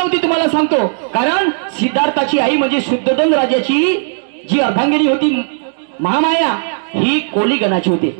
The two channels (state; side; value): silent; left; digital silence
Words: तुम्हाला सांगतो. कारण सिद्धार्थाची आई म्हणजे शुद्धोधन राजाची जी अर्धांगिनी होती महामाया, ही कोली गणाची होती.